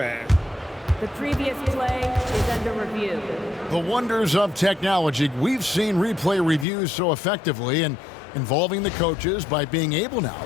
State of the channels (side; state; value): right; drops out; at 6.7 s